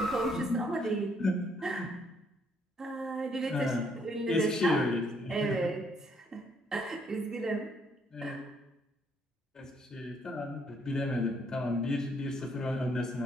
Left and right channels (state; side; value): normal; both; correlation 0.69